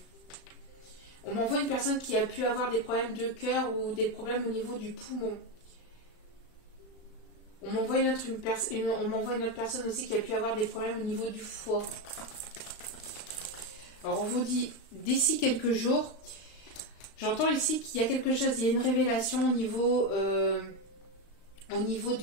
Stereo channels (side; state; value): right; late; 35 ms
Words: on m'envoie une personne qui a pu avoir des problèmes de cœur ou des problèmes au niveau du poumon. On m'envoie une autre personne aussi qui a pu avoir des problèmes au niveau du foie. Alors on vous dit, d'ici quelques jours, j'entends ici qu'il y a quelque chose, il y a une révélation au niveau